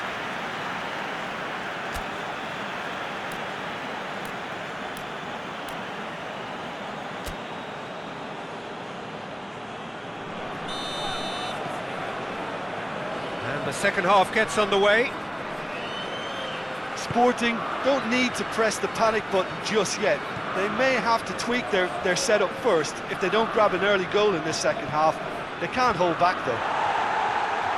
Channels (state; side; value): identical; both; correlation 1.00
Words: The second half gets underway. Sporting don't need to press the panic button just yet. They may have to tweak their setup first. If they don't grab an early goal in this second half, they can't hold back though.